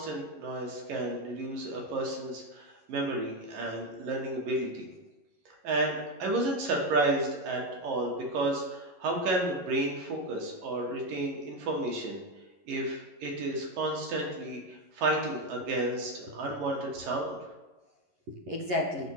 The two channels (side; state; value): left; late; 11 ms